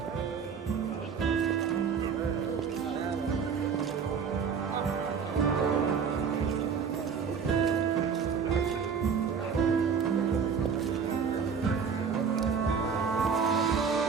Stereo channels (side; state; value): left; quieter; 6.3 dB